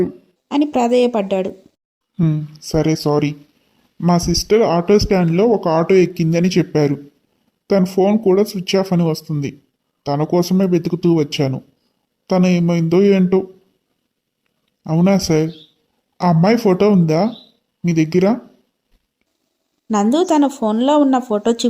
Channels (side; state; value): both; identical; correlation 1.00